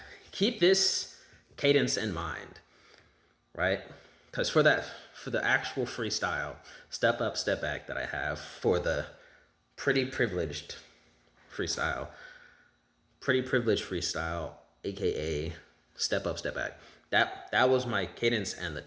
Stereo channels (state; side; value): identical; both; correlation 1.00